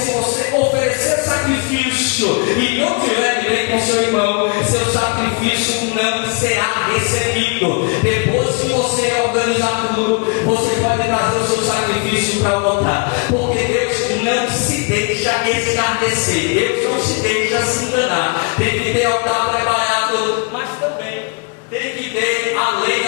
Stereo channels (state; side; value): quieter; right; 33.8 dB